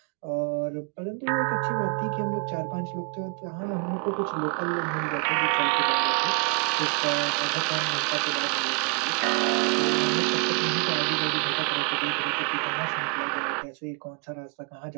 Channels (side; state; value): left; quieter; 34.4 dB